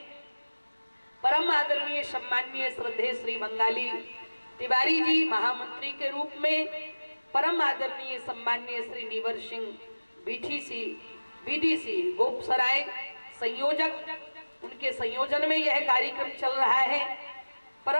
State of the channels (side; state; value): both; inverted; correlation -1.00